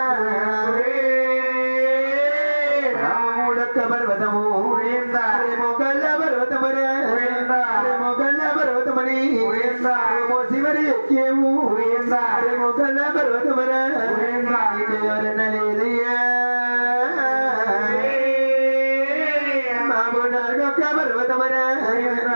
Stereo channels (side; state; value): both; inverted; correlation -1.00